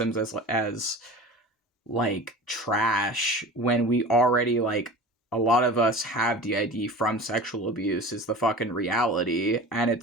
as like trash, when we already, like, a lot of us have DID from sexual abuse is the fucking reality. And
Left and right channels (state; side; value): normal; both; correlation 0.36